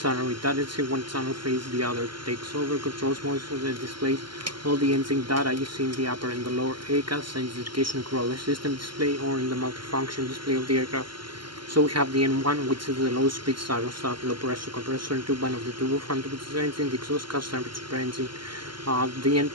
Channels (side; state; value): left; late; 0.72 ms